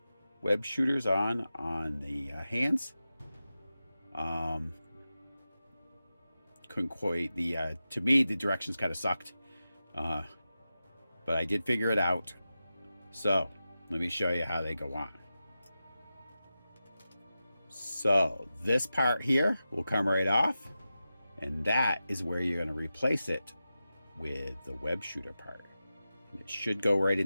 web shooters on the hands, couldn't quite to me the directions kind of sucked, but I did figure it out. So let me show you how they go on. So this part here will come right off, and that is where you're going to replace it with the web shooter part. And it should go right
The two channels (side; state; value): both; inverted; correlation -0.92